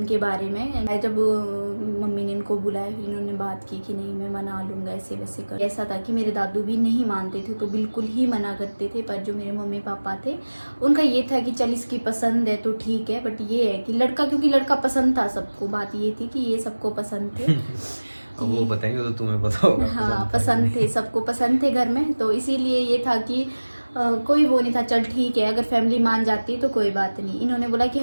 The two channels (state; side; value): inverted; both; correlation -1.00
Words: बारे में। मैं जब मम्मी ने इनको बुलाया, फिर इन्होंने बात की कि नहीं मैं मना लूँगा, ऐसे वैसे कर। ऐसा था कि मेरे दादू भी नहीं मानते थे, तो बिल्कुल ही मना करते थे। पर जो मेरे मम्मी पापा थे उनका ये था कि चल इसकी पसंद है तो ठीक है, बट ये है कि लड़का, क्योंकि लड़का पसंद था सबको, बात ये थी कि ये सबको पसंद थे। अब वो बताएंगे तो तुम्हें पता होगा। हाँ पसंद थे, सबको पसंद थे घर में, तो इसीलिए ये था कि कोई वो नहीं था, चल ठीक है अगर फैमिली मान जाती है तो कोई बात नहीं। इन्होंने बोला कि